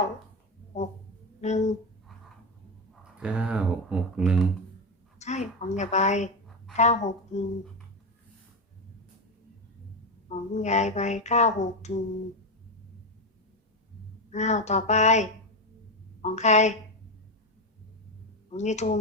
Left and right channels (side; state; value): both; normal; correlation 0.12